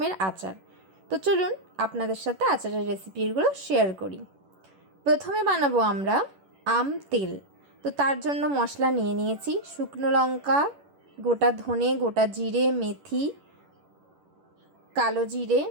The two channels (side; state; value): left; late; 11 ms